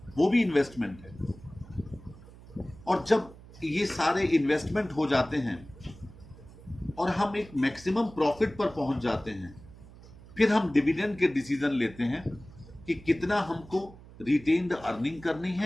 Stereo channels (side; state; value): right; noise; hum, 20 dB below the sound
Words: वो भी इन्वेस्टमेंट है। और जब ये सारे इन्वेस्टमेंट हो जाते हैं और हम एक मैक्सिमम प्रॉफिट पर पहुंच जाते हैं, फिर हम डिविडेंड के डिसीजन लेते हैं कि कितना हमको रिटेन्ड अर्निंग करनी